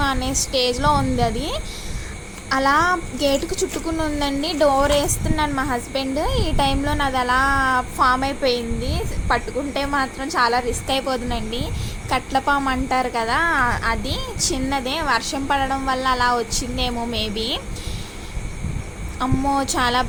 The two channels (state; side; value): identical; both; correlation 1.00